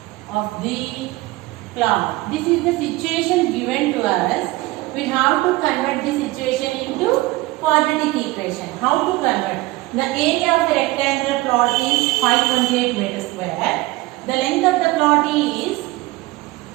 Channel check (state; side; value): quieter; left; 19.9 dB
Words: of the plot. This is the situation given to us. We have to convert the situation into quadratic equation. How to convert? The area of the rectangular plot is 528 meters square. The length of the plot is